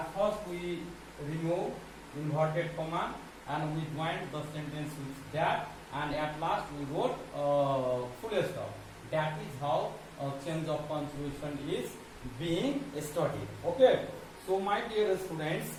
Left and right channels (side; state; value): both; identical; correlation 1.00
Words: first we remove inverted comma and we joined the sentence with that, and at last we wrote full stop. That is how change of punctuation is being studied. Okay, so my dear students,